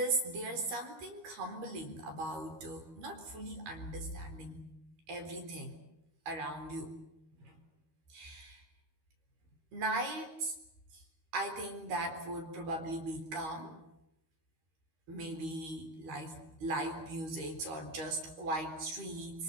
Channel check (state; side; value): late; left; 13 ms